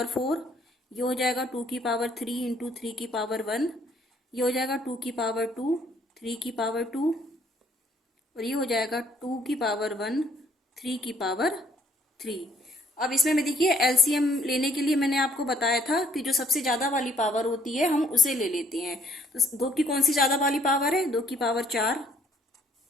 4, ये हो जाएगा 2 की पावर 3 इंटू 3 की पावर 1, ये हो जाएगा 2 की पावर 2, 3 की पावर 2, और ये हो जाएगा 2 की पावर 1, 3 की पावर 3। अब इसमें में देखिए एलसीएम लेने के लिए मैंने आपको बताया था कि जो सबसे ज्यादा वाली पावर होती है हम उसे ले लेते हैं। तो 2 की कौन सी ज्यादा वाली पावर है, 2 की पावर 4।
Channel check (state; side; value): normal; both; correlation 0.64